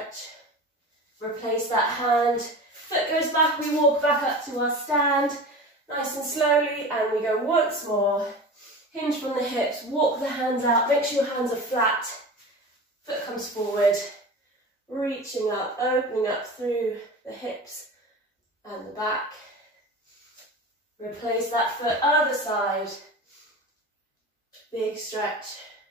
Replace that hand. Foot goes back, we walk back up to our stand. Nice and slowly, and we go once more. Hinge from the hips, walk the hands out, make sure your hands are flat. Foot comes forward, reaching up, opening up through the hips and the back. Replace that foot, other side. Big stretch.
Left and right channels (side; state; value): both; normal; correlation 0.33